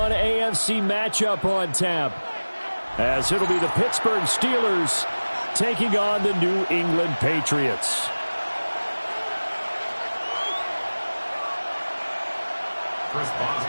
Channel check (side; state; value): both; inverted; correlation -1.00